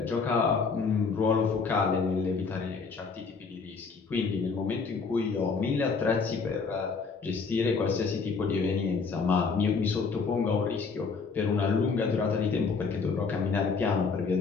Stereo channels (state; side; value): quieter; right; 4.9 dB